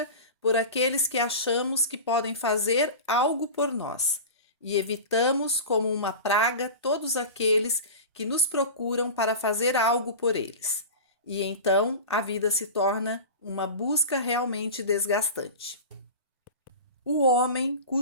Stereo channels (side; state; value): both; inverted; correlation -0.30